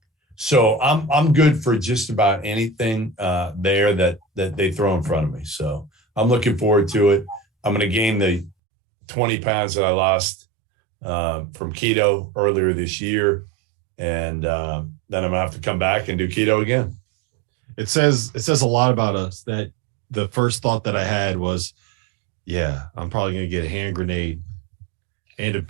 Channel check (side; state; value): left; drops out; at 8.6 s